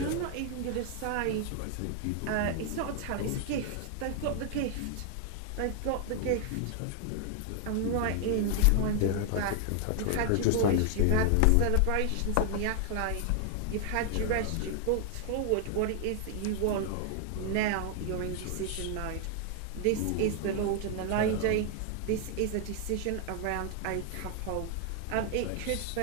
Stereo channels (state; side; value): different; both; correlation 0.00